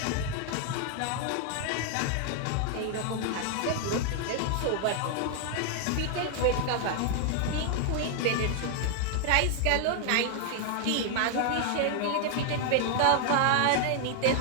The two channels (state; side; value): different; both; correlation 0.00